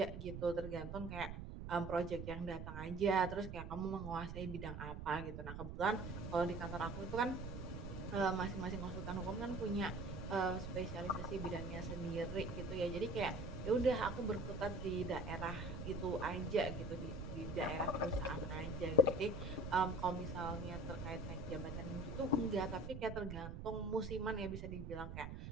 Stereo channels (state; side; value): noise; right; rumble, 7 dB below the sound